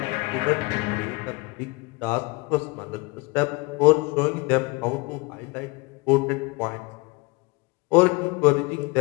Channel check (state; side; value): quieter; right; 26.0 dB